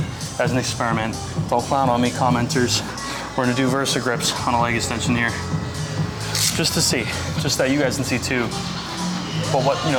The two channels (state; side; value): identical; both; correlation 1.00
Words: as an experiment. Don't clown on me, commenters. We're gonna do Versa grips on a leg extension here. Just to see, just that you guys can see too. But what, you